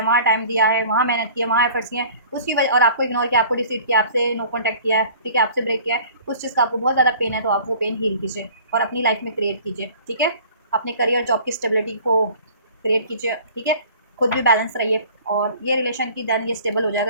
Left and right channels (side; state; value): both; inverted; correlation -0.48